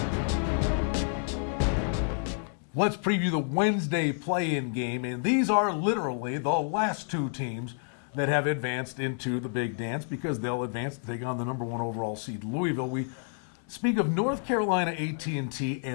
Let's preview the Wednesday play-in game, and these are literally the last two teams that have advanced into the big dance because they'll advance to take on the #1 overall seed Louisville. We speak of North Carolina A&T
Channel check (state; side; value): silent; right; 58 dB below the other